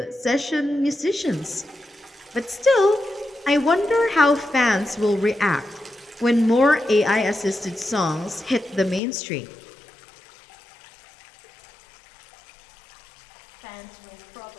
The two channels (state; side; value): drops out; right; at 9.0 s